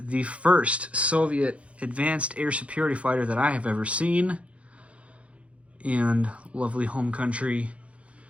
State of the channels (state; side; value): late; left; 0.062 ms